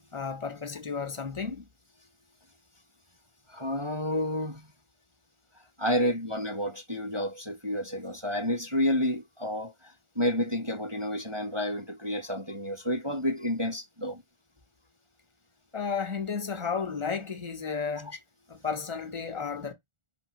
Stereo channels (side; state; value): left; late; 1.4 ms